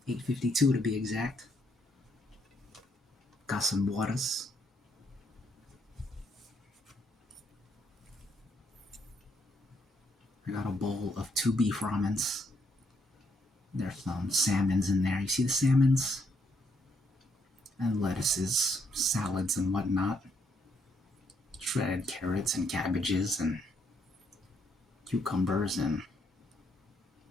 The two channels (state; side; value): normal; both; correlation 0.74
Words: 8:52 to be exact. Got some waters. I got a bowl of 2 beef ramens. There's some salmons in there. You see the salmons? And lettuces, salads, and whatnot. Shredded carrots and cabbages and cucumbers and